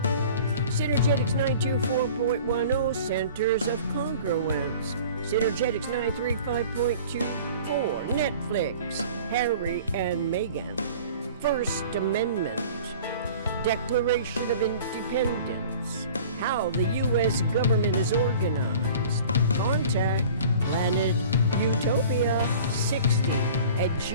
Synergetics 924.10 centers of congruence. Synergetics 935.24 Netflix, Harry and Meghan. First Amendment. Declaration of Independence. How the U.S. government is organized. Contact Planet Utopia 60 at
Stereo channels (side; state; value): both; inverted; correlation -0.44